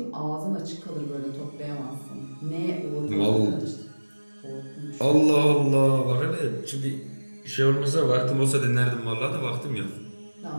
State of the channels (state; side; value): inverted; both; correlation -1.00